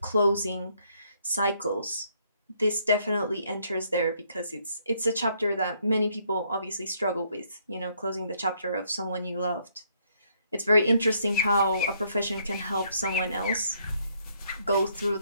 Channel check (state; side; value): inverted; both; correlation -0.70